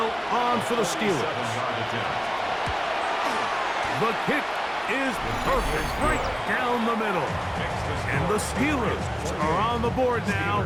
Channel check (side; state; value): both; identical; correlation 1.00